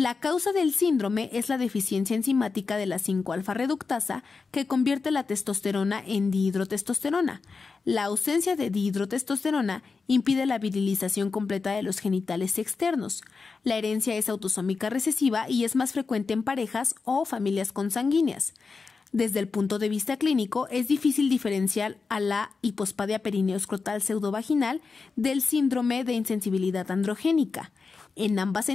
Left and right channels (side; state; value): right; quieter; 4.6 dB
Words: causa del síndrome es la deficiencia enzimática de la 5-alfa reductasa que convierte la testosterona en dihidrotestosterona. La ausencia de dihidrotestosterona impide la virilización completa de los genitales externos. La herencia es autosómica recesiva y es más frecuente en parejas o familias consanguíneas. Desde el punto de vista clínico, es difícil diferenciar a la hipospadia perineoescrotal pseudovaginal del síndrome de insensibilidad androgénica. En ambas